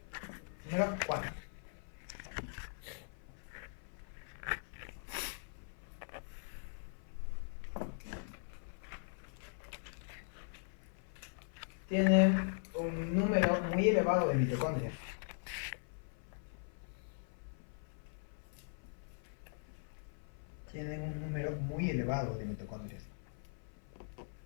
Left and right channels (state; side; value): silent; right; 51 dB below the other